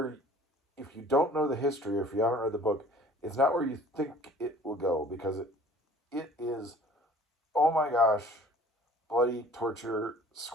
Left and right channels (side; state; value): both; normal; correlation 0.50